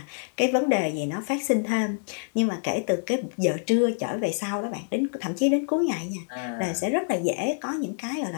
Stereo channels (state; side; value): silent; right; digital silence